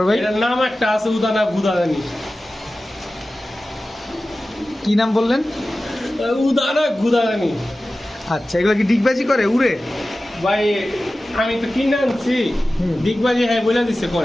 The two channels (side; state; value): both; normal; correlation 0.95